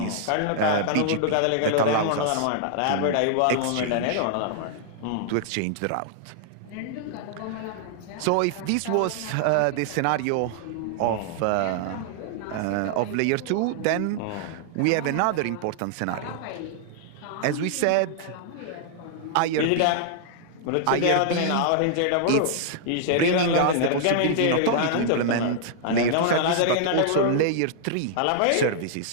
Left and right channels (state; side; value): different; both; correlation -0.01